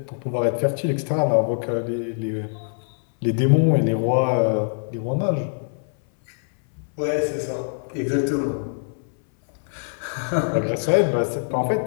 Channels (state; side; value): silent; right; 59 dB below the other